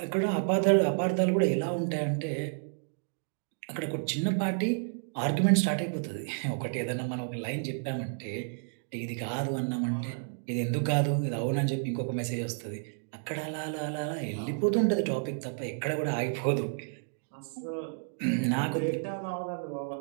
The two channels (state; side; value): silent; left; digital silence